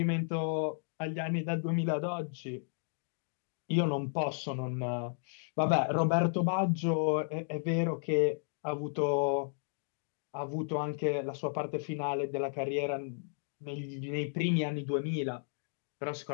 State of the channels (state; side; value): silent; right; digital silence